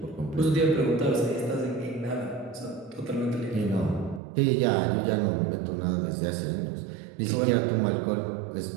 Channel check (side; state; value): left; drops out; at 4.2 s